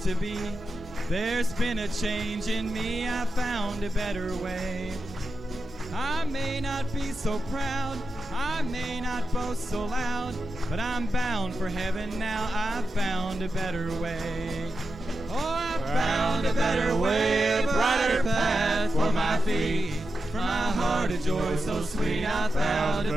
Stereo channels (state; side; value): normal; both; correlation 0.89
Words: to be. There's been a change in me, I found a better way. I may not be so proud, I may not boast so loud, but I'm bound for heaven now, I found a better way. Oh, I found a better way, a brighter path for my feet. From my heart a joy so sweet, I found a